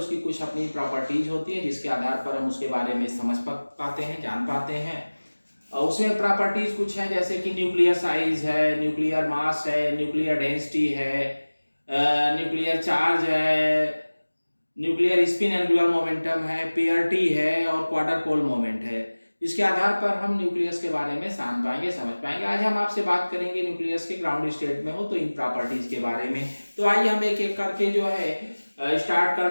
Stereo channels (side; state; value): both; inverted; correlation -1.00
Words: कुछ अपनी प्रॉपर्टीज होती हैं जिसके आधार पर हम उसके बारे में समझ पाते हैं, जान पाते हैं। उसमें प्रॉपर्टीज कुछ हैं जैसे कि न्यूक्लियर साइज है, न्यूक्लियर मास है, न्यूक्लियर डेंसिटी है, न्यूक्लियर चार्ज है, न्यूक्लियर स्पिन एंगुलर मोमेंटम है, पीआरटी है और क्वार्टर पोल मोमेंट है। इसके आधार पर हम न्यूक्लियस के बारे में जान पाएंगे, समझ पाएंगे। आज हम आपसे बात करेंगे न्यूक्लियस के ग्राउंड स्टेट में हो तो इन प्रॉपर्टीज के बारे में। तो आइए हम एक एक करके जो है स्टार्ट